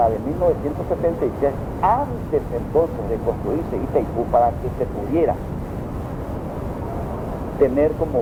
de 1976, antes entonces de construirse Itaipú, para que se pudiera tener como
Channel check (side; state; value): both; identical; correlation 1.00